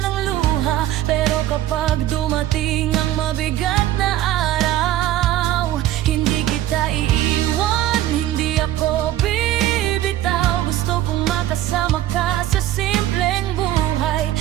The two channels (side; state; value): left; quieter; 13.5 dB